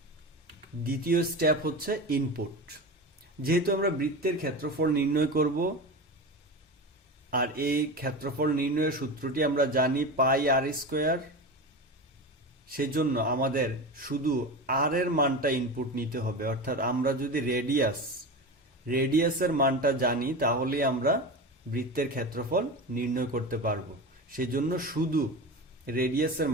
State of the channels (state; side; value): normal; both; correlation 0.26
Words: দ্বিতীয় স্টেপ হচ্ছে ইনপুট। যেহেতু আমরা বৃত্তের ক্ষেত্রফল নির্ণয় করব আর এই ক্ষেত্রফল নির্ণয়ের সূত্রটি আমরা জানি পাই আর স্কোয়ার, সেজন্য আমাদের শুধু আর এর মানটা ইনপুট নিতে হবে। অর্থাৎ আমরা যদি রেডিয়াসের মানটা জানি তাহলে আমরা বৃত্তের ক্ষেত্রফল নির্ণয় করতে পারবো। সেজন্য শুধু রেডিয়াসের